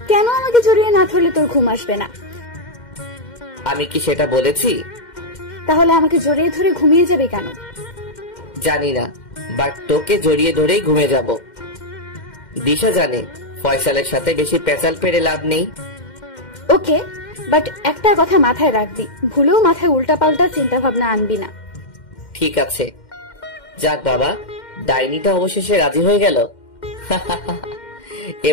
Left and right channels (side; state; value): right; late; 2.1 ms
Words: কেন আমাকে জড়িয়ে না ধরলে তোর ঘুম আসবে না? আমি কি সেটা বলেছি? তাহলে আমাকে জড়িয়ে ধরে ঘুমিয়ে যাবে কেন? জানি না, বাট তোকে জড়িয়ে ধরেই ঘুমে যাব। দিশা জানে ফয়সালের সাথে বেশি পেঁচাল পেরে লাভ নেই। ওকে, বাট একটা কথা মাথায় রাখবি, ভুলেও মাথায় উল্টাপাল্টা চিন্তা ভাবনা আনবি না। ঠিক আছে। যাক বাবা, ডাইনিটা অবশেষে রাজি হয়ে গেল।